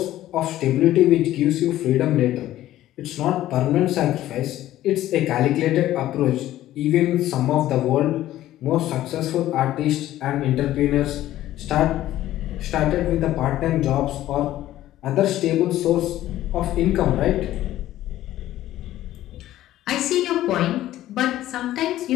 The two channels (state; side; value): quieter; right; 14.0 dB